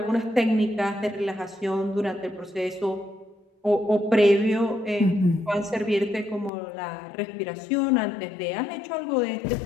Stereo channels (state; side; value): drops out; right; at 6.5 s